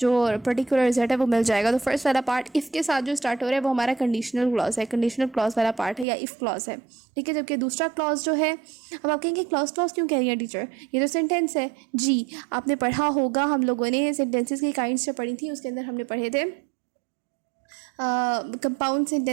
पर्टिकुलर रिजल्ट है वो मिल जाएगा. तो फर्स्ट वाला पार्ट इफ़ के साथ जो स्टार्ट हो रहा है वो हमारा कंडीशनल क्लॉज है, कंडीशनल क्लॉज वाला पार्ट है या इफ़ क्लॉज है. ठीक है, जबकि दूसरा क्लॉज जो है, अब आप कहेंगे क्लॉज क्यों कह रही है टीचर, ये तो सेंटेंस है. जी, आपने पढ़ा होगा, हम लोगों ने सेंटेंसेस की काइंड्स जो पढ़ी थी उसके अंदर हमने पढ़े थे compound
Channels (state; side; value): drops out; left; at 6.1 s